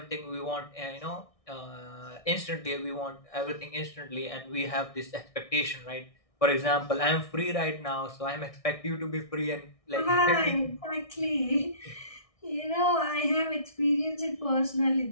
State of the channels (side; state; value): right; late; 1.6 ms